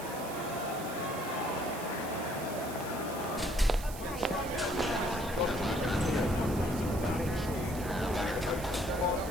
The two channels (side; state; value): right; noise; hiss, 13 dB below the sound